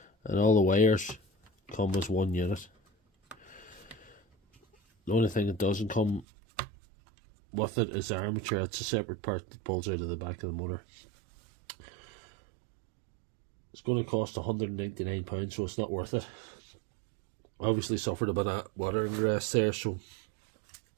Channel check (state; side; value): drops out; left; at 6.2 s